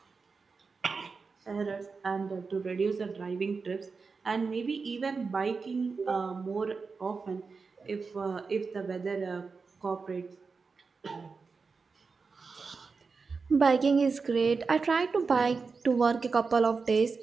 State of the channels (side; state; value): left; quieter; 4.7 dB